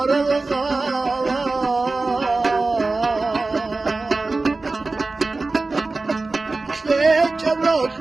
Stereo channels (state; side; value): quieter; left; 3.5 dB